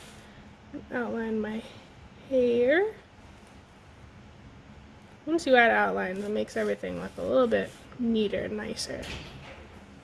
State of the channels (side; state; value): both; identical; correlation 1.00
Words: Outline my hair. Once you add outline, it makes everything look a little bit neater, nicer.